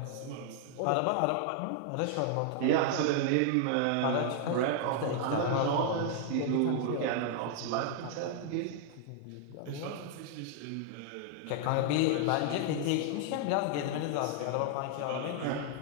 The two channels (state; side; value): different; both; correlation 0.00